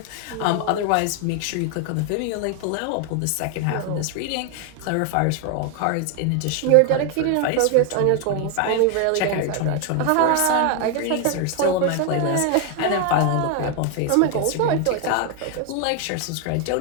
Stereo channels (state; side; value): different; both; correlation 0.00